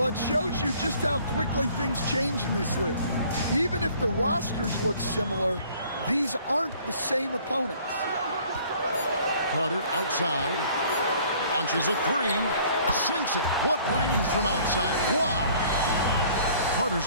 it shows you just how quickly things change in this league. Even if the rosters look similar, these aren't the same opponents. Carter outside, launches a 3, sinks it. What range from outside. Wow.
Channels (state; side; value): inverted; both; correlation -0.55